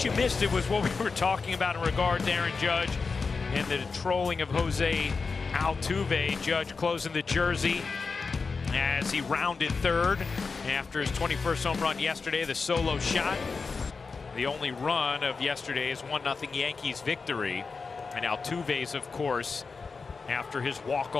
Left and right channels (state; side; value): quieter; right; 4.7 dB